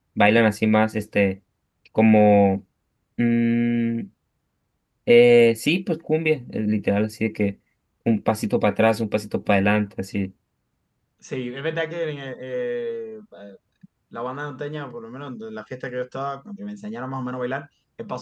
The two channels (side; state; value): both; identical; correlation 1.00